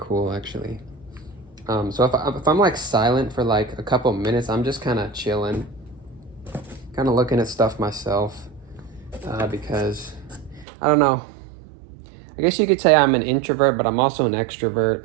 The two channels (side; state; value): left; drops out; at 10.7 s